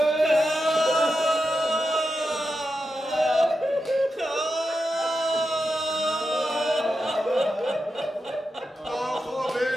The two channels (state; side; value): normal; both; correlation 0.89